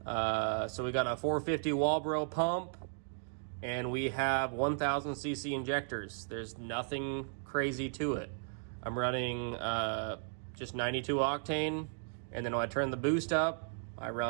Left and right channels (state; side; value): silent; left; digital silence